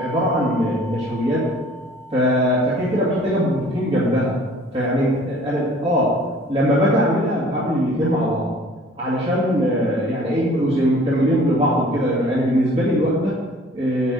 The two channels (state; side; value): normal; both; correlation 0.51